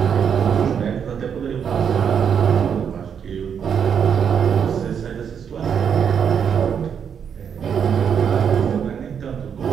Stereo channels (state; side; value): quieter; left; 7.6 dB